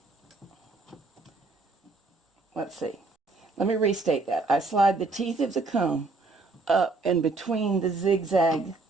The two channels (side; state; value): left; quieter; 3.5 dB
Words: Let's see. Let me restate that. I slide the teeth of the comb up and between the zigzag